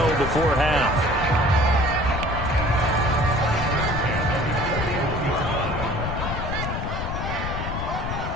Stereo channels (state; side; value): noise; left; rumble, 4 dB below the sound